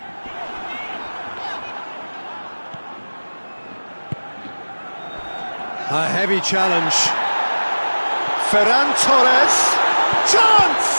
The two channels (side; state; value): both; inverted; correlation -1.00